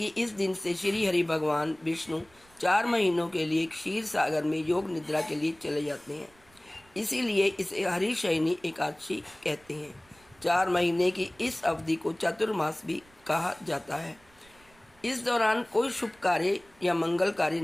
इस दिन से श्री हरि भगवान विष्णु 4 महीनों के लिए क्षीर सागर में योग निद्रा के लिए चले जाते हैं। इसीलिए इसे हरिशयनी एकादशी कहते हैं। 4 महीने की इस अवधि को चतुर्मास भी कहा जाता है। इस दौरान कोई शुभ कार्य या मंगल कार्य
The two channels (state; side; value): noise; right; rumble, 29 dB below the sound